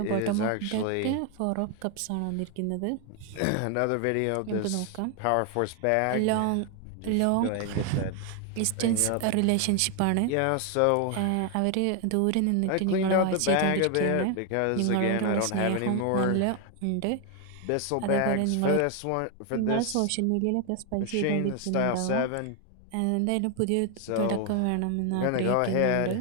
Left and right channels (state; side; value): different; both; correlation 0.01